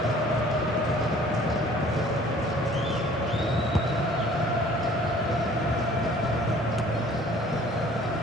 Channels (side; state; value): both; normal; correlation 0.52